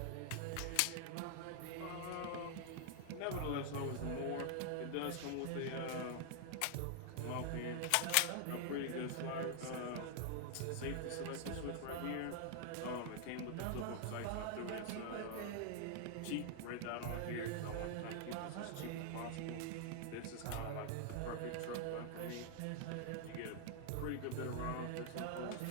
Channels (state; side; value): different; both; correlation 0.00